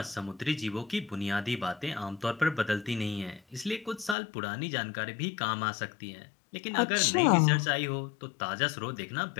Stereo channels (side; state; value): right; drops out; at 4.2 s